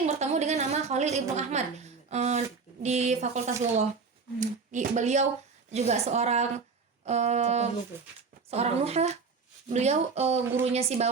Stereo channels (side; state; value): left; quieter; 4.9 dB